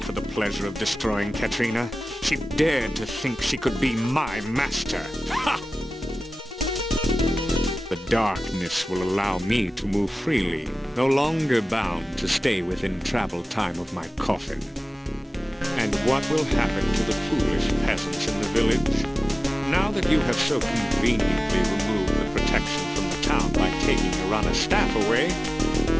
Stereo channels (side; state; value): both; normal; correlation 0.96